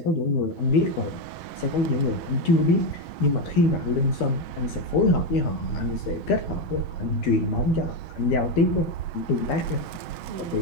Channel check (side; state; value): right; late; 11 ms